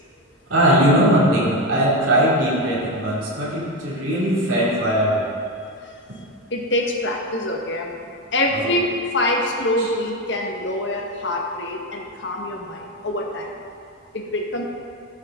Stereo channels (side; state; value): both; normal; correlation 0.14